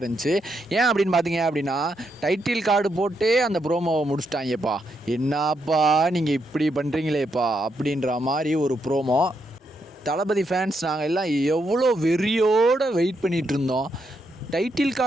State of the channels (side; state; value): both; normal; correlation 0.80